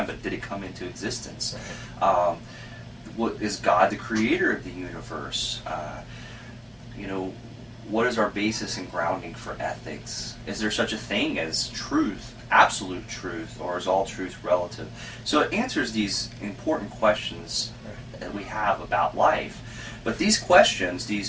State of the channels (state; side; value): identical; both; correlation 1.00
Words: but did it come into existence? Right. What is God the creator of the universe? What is our basis and grounding for ethics? Is there such a thing as truth, absolute truth, or is all truth relative? So it answers these important questions that we have about life. But these questions,